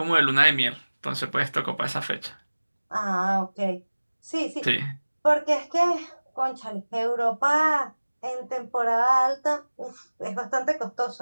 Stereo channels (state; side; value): inverted; both; correlation -1.00